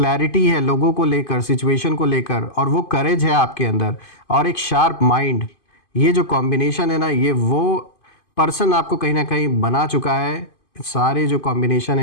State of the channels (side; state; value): right; late; 2.5 ms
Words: है लोगों को लेकर, सिचुएशन को लेकर, और वो करेज है आपके अंदर, और एक शार्प माइंड। ये जो कॉम्बिनेशन है ना, ये वो पर्सन आपको कहीं ना कहीं बना चुका है। सारे जो कॉम्बिनेशन